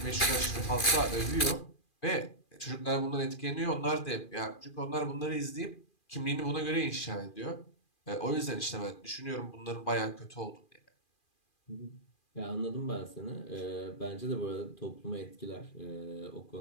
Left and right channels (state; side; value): late; right; 2.4 ms